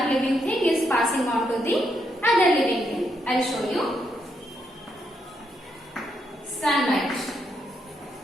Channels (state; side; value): normal; both; correlation 0.79